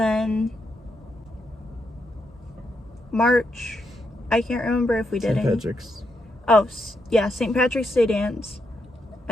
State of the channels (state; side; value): normal; both; correlation 0.81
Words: March, I can't remember if we did St. any. Patrick's. Oh, yeah, St. Patrick's Day dance.